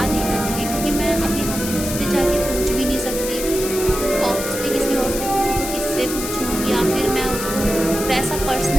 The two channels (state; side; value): noise; left; hiss, 6 dB below the sound